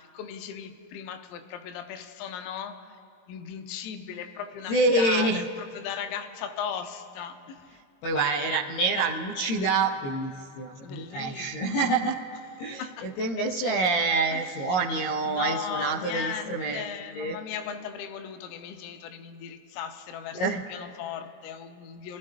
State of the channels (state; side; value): late; right; 22 ms